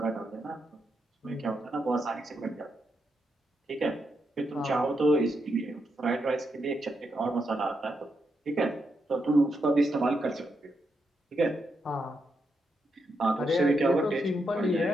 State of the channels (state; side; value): normal; both; correlation 0.82